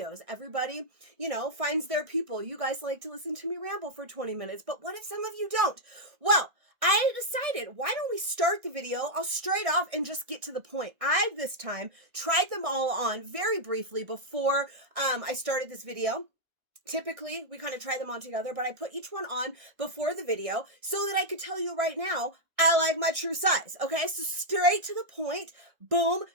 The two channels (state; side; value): late; left; 1.6 ms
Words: Everybody, finds their people. You guys like to listen to me ramble for 20 minutes, but what if some of you don't? Well, I decided, why don't we start the video? I'll straight off and just get to the point. I, this time, tried them all on very briefly before I started this video. Typically, we kind of try them on together, but I put each one on before the video so that I could tell you right now, I like my true size. Okay, so straight to the point, boom,